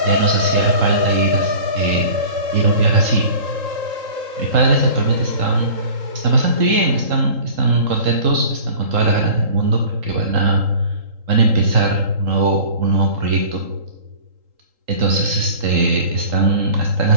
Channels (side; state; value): left; late; 3.8 ms